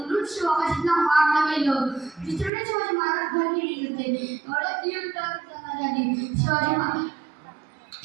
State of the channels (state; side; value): drops out; left; at 2.5 s